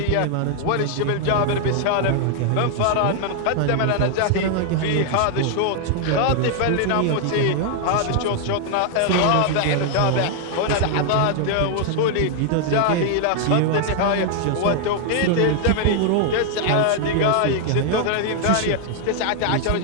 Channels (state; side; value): different; both; correlation 0.00